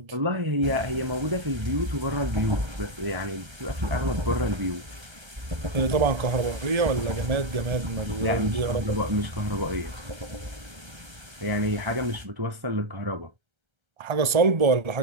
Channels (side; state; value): left; late; 1.3 ms